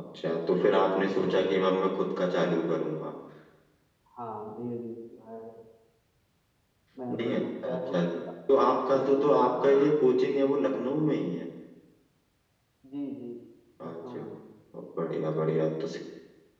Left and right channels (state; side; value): identical; both; correlation 1.00